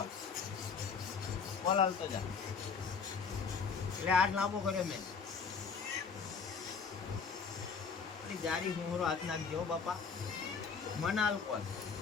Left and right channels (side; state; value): right; quieter; 5.7 dB